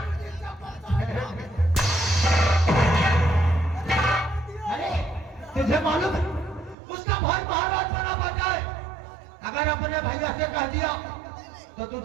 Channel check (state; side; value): drops out; left; at 6.8 s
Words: अरे तुझे मालूम है उसका भाई महाराज बना बैठा है। अगर अपने भैया से कह दिया तो